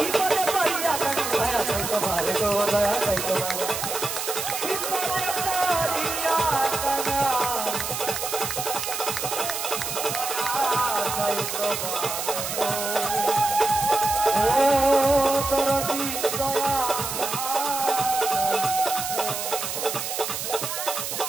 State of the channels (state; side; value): noise; right; hiss, 4 dB below the sound